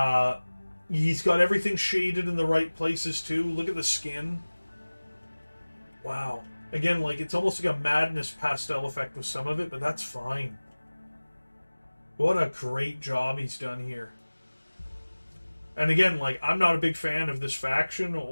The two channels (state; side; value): inverted; both; correlation -1.00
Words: He's got everything shaded in the right places, too. Look at the skin. Wow. Again, like, it's almost like a madness pastel effect with some of it, but that's fine. What a great job he's done here. And again, like, I'm not a big fan of this faction